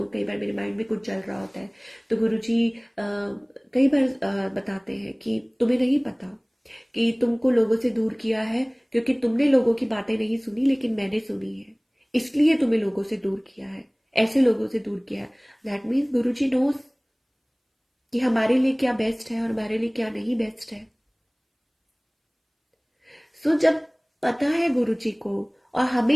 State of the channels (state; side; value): identical; both; correlation 1.00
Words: बार मेरे माइंड में कुछ चल रहा होता है तो गुरुजी कई बार बताते हैं कि तुम्हें नहीं पता कि तुमको लोगों से दूर किया है, क्योंकि तुमने लोगों की बातें नहीं सुनी लेकिन मैंने सुनी है, इसलिए तुम्हें लोगों से दूर किया है, ऐसे लोगों से दूर किया है। दैट मीन्स गुरुजी नोस कि हमारे लिए क्या बेस्ट है और हमारे लिए क्या नहीं बेस्ट है। सो जब पता है गुरुजी को, और हमें